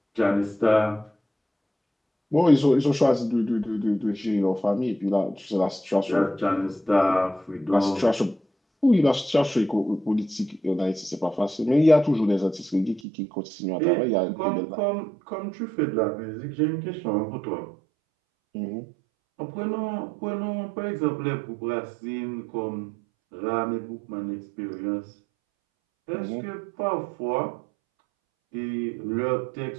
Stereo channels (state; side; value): drops out; left; at 13.0 s